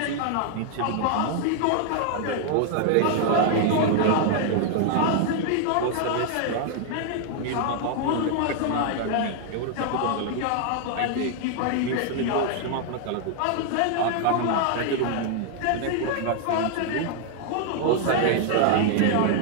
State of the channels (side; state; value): both; different; correlation 0.00